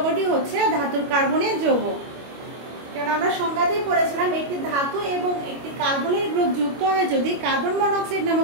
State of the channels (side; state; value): left; late; 25 ms